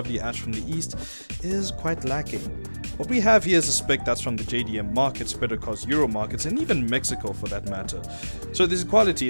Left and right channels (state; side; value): inverted; both; correlation -1.00